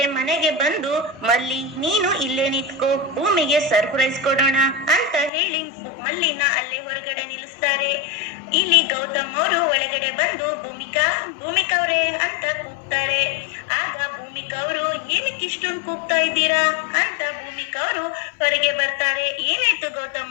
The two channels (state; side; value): drops out; right; at 5.3 s